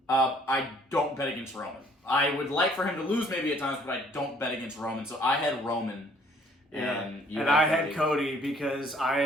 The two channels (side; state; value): both; normal; correlation 0.60